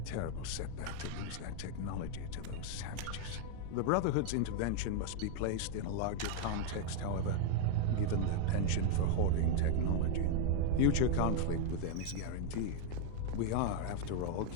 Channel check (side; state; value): both; different; correlation 0.00